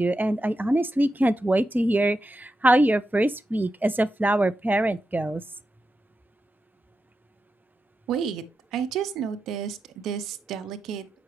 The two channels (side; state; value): both; normal; correlation 0.88